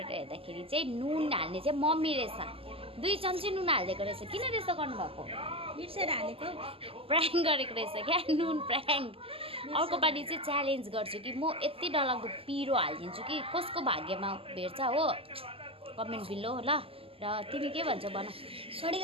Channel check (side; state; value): left; late; 0.27 ms